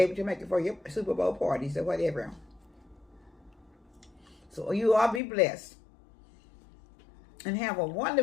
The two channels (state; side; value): drops out; right; at 5.2 s